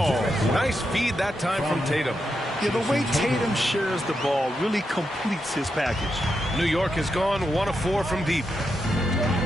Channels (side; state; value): both; normal; correlation 0.85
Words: Nice feed that time from Tatum. Yeah, the way Tatum shares the ball really completes his package. New York has gone 1 of 4 from deep.